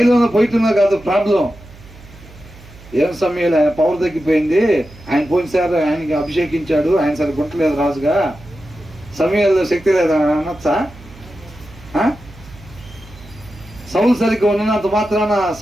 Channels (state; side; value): noise; right; hum, 21 dB below the sound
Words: పోయితున్నా కాదు ప్రాబ్లం. ఏం సమయాలు ఆయన పవర్ తగ్గిపోయింది, ఆయన పోయినసారి ఆయనకి అభిషేకించాడు, ఆయన సరిగ్గా గుంటలేదు రాజుగా, సమయాల్లో శక్తి లేదా అనొచ్చా? సౌలు సరిగ్గా ఉన్నంత మాత్రాన